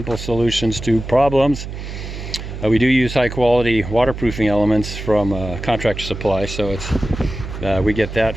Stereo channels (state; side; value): noise; right; hum, 9 dB below the sound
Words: solutions to problems. We do use high quality waterproofing elements from Contractor Supply, so it's we get that